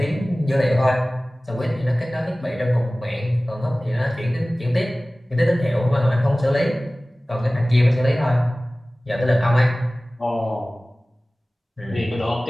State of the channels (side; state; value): both; normal; correlation 0.98